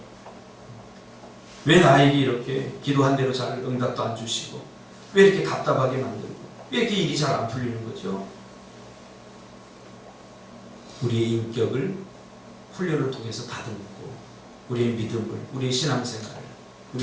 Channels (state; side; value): identical; both; correlation 1.00